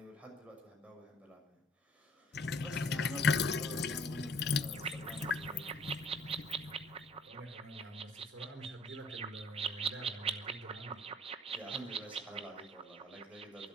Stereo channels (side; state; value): both; normal; correlation 0.58